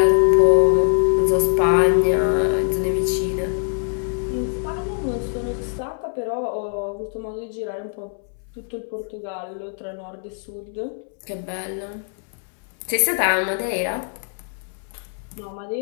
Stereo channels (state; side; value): silent; right; 64 dB below the other